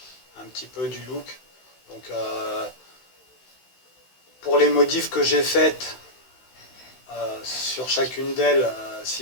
un petit peu du look. Donc pour les modifs que j'ai faites sur chacune d'elles,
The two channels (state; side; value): late; right; 16 ms